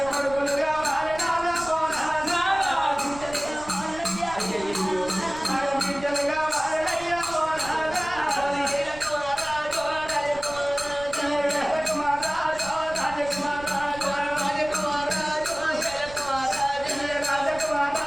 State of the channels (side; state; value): right; noise; rumble, 16 dB below the sound